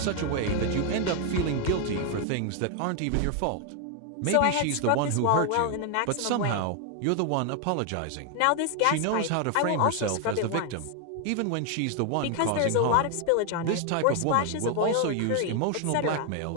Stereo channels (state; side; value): different; both; correlation 0.00